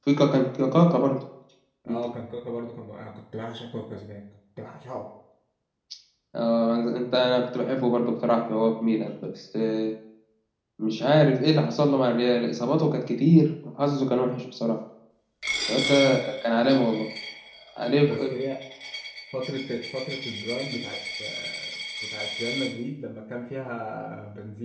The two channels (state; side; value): identical; both; correlation 1.00